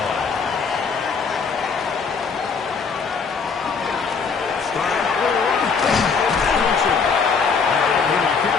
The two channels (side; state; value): right; quieter; 5.4 dB